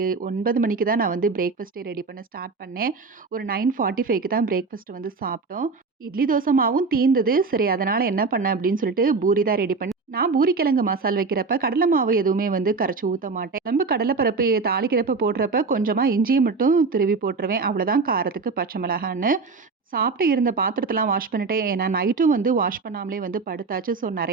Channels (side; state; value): left; quieter; 4.3 dB